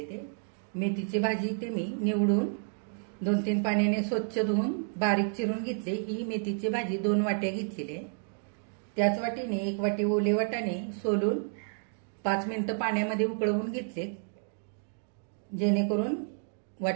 ते. मेथीची भाजी ते मी निवडून 2-3 पाण्याने स्वच्छ धुवून बारीक चिरून घेतले. ही मेथीची भाजी 2 वाट्या घेतलेली आहे. त्याच वाटीने 1 वाटी ओले वाटाणे सोलून 5 मिनिटं पाण्यामध्ये उकळवून घेतले, जेणेकरून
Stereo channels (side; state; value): left; silent; 57 dB below the other